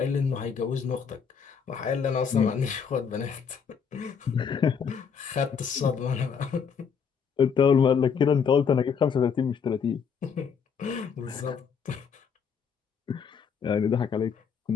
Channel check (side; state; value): right; quieter; 6.6 dB